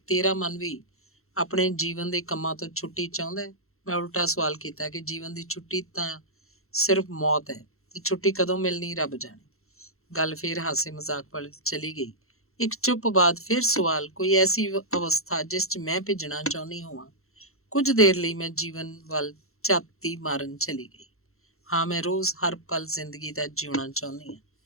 ਤੇਰਾ ਮਨ ਵੀ ਆਪਣੇ ਜੀਵਨ ਦੇ ਕੰਮਾਂ ਤੋਂ ਛੁੱਟੀ ਚਾਹੁੰਦਾ ਹੈ? ਮੈਂ ਉਲਟਾ ਸਵਾਲ ਕੀਤਾ ਕਿ ਜੀਵਨ ਦੀ ਛੁੱਟੀ ਤਾਂ ਸਿਰਫ ਮੌਤ ਹੈ, ਤੇ ਛੁੱਟੀ ਕਦੋਂ ਮਿਲਣੀ ਰੱਬ ਜਾਣੇ। ਗੱਲ ਫਿਰ ਹਾਸੇ ਮਜ਼ਾਕ ਵੱਲ ਚਲੀ ਗਈ। ਇੱਕ ਚੁੱਪ ਬਾਅਦ ਫਿਰ ਸਵਾਲ, ਕੋਈ ਐਸੀ ਅਵਸਥਾ ਜਿਸ 'ਚ ਮੈਂ ਭਿੱਜਣਾ ਚਾਹੁੰਦੀ ਹੋਵਾਂ? ਕੁਝ ਦੇਰ ਲਈ ਮੈਂ ਜੀਵਨ ਵੱਲ ਝਾਤੀ ਮਾਰਨ ਚਲੀ ਗਈ। ਹਾਂ, ਮੈਂ ਰੋਜ਼ ਹਰ ਪਲ ਜ਼ਿੰਦਗੀ ਦਾ ਜਿਉਣਾ ਚਾਹੁੰਦੀ ਹਾਂ।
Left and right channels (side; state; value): right; late; 0.62 ms